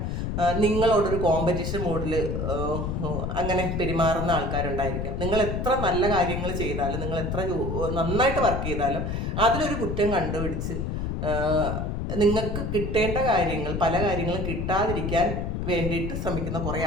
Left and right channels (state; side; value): noise; left; rumble, 2 dB below the sound